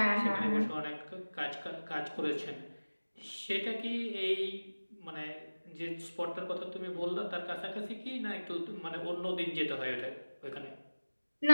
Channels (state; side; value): inverted; both; correlation -1.00